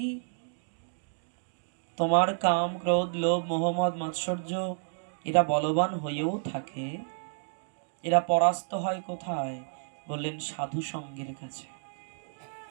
তোমার কাম ক্রোধ লোভ মোহাম্মদ মাৎসর্য এরা বলবান হয়েও থাকে, এরা পরাস্ত হয় কোথায়? বললেন সাধু সঙ্গের কাছে।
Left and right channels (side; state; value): left; silent; digital silence